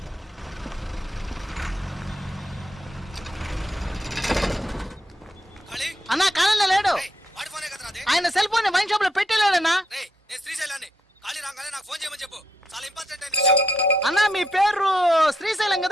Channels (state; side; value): normal; both; correlation 0.78